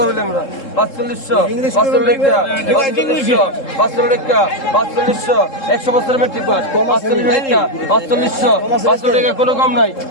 বলি আমরা 4500 100 বছরের মেট্রিক পাস 4500 টাকা কোনো কম নাই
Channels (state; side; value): late; right; 3.7 ms